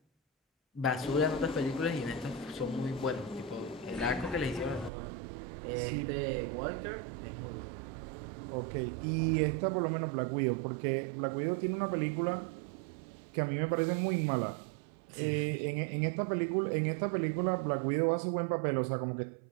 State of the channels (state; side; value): drops out; left; at 4.9 s